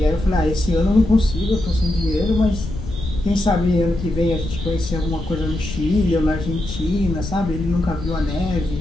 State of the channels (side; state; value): left; noise; rumble, 8 dB below the sound